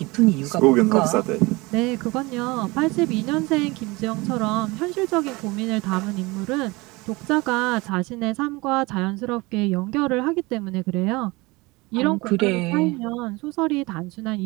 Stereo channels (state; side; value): quieter; left; 23.7 dB